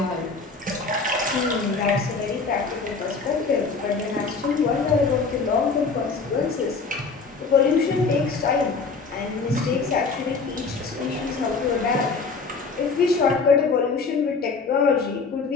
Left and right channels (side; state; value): right; quieter; 4.5 dB